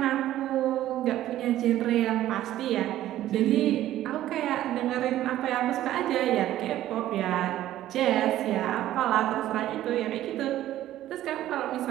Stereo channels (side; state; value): left; quieter; 13.5 dB